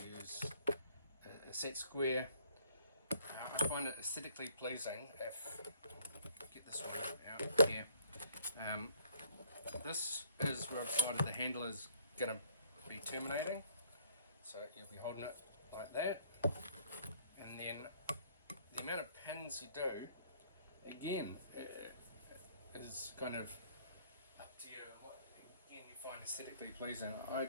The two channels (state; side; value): inverted; both; correlation -0.61